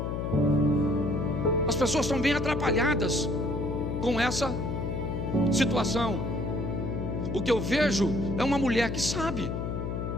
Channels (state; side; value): noise; left; hum, 3 dB below the sound